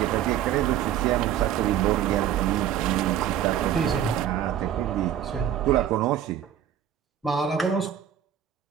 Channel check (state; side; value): quieter; left; 10.1 dB